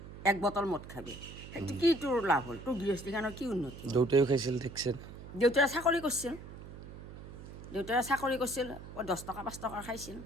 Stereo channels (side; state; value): right; noise; hum, 13 dB below the sound